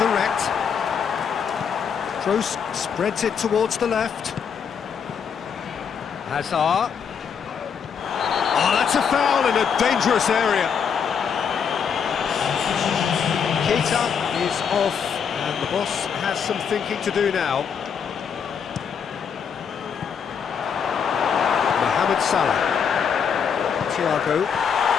Kroos spreads it towards the left. Hazard. Oh, that's a foul in a dangerous area. Keita is off, and the boss has some thinking to do now. Mohamed Salah. Thiago.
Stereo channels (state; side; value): quieter; right; 7.0 dB